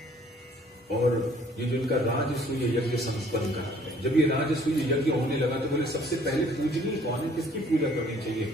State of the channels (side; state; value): both; normal; correlation 0.58